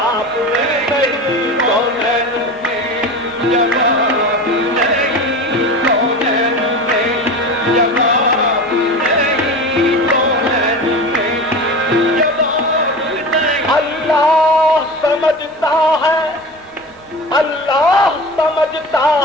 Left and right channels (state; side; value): normal; both; correlation 0.31